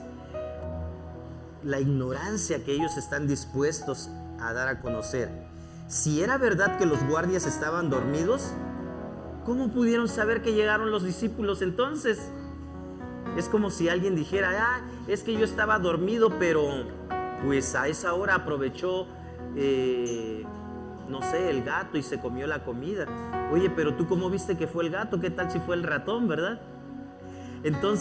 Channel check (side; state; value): both; identical; correlation 1.00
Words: la ignorancia que ellos están dispuestos a dar a conocer. Si era verdad que los guardias estaban dormidos, ¿cómo pudieron saber que llegaron los discípulos entonces? Es como si alguien dijera, es que yo estaba dormido, pero pues a esa hora aprovechó, no sé, el gato y se comió la comida. Oye, pero tú ¿cómo viste que fue el gato? ¿Qué tal si fue el ratón, verdad?